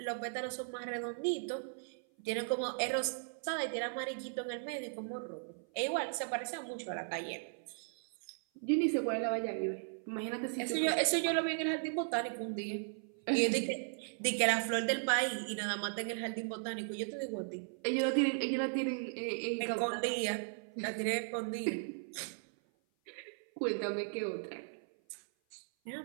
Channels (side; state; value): left; silent; 53 dB below the other